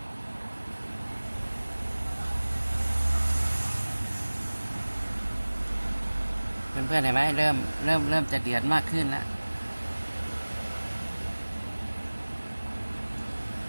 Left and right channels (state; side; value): inverted; both; correlation -1.00